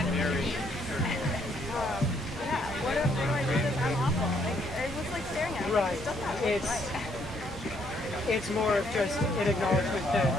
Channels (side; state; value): both; normal; correlation 0.69